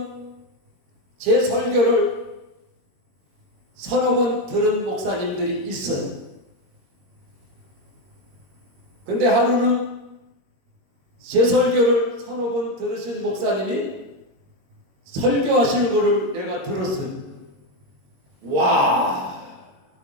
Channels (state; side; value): late; left; 21 ms